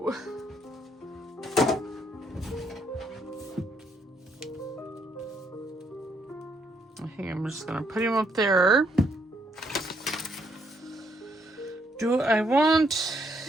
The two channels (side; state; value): both; normal; correlation 0.72